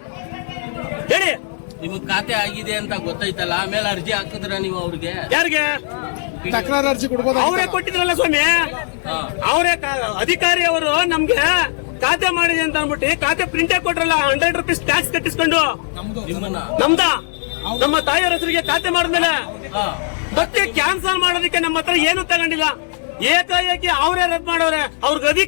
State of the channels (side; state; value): right; silent; 67 dB below the other